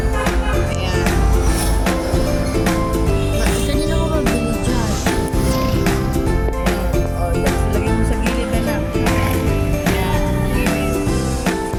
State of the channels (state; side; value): identical; both; correlation 1.00